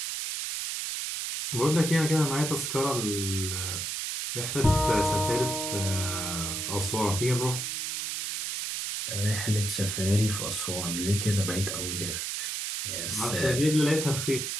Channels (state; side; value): noise; right; hiss, 3 dB below the sound